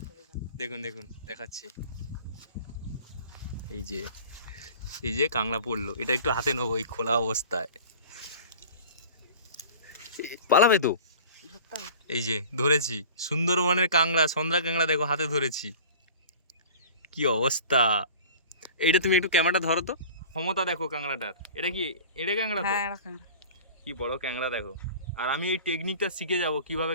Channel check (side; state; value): both; inverted; correlation -0.41